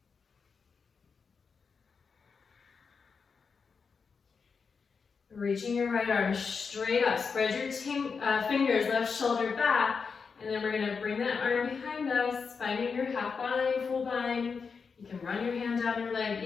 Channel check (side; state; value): right; quieter; 5.4 dB